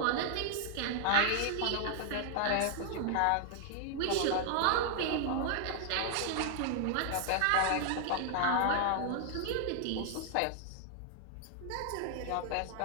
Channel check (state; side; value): different; both; correlation 0.00